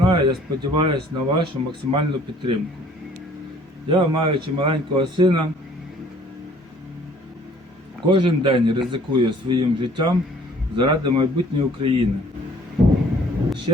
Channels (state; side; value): normal; both; correlation 0.56